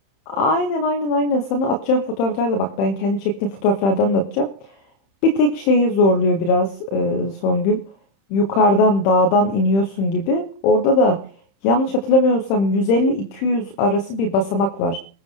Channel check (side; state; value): right; late; 31 ms